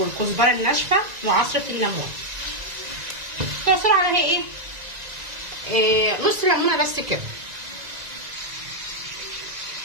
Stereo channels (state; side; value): late; left; 1.9 ms